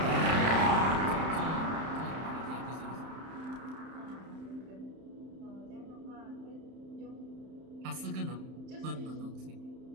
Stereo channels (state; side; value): late; left; 31 ms